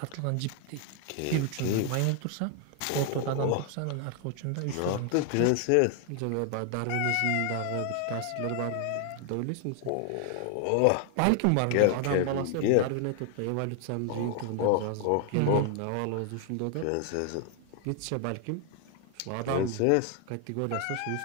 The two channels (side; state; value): both; different; correlation 0.00